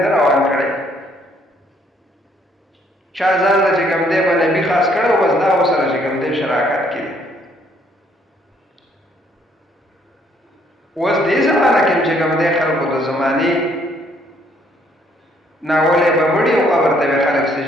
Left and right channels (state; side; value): normal; both; correlation 0.66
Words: ده روان کړی. چا ځان له چې کوم دی به نبي خاص کړی و، بس دا ورسره چې کوم دی شراکت کې دی. اوس دې زمانه کې چې کوم دی خلکو د زمانې ناولی به مړي او قبر ته به خلک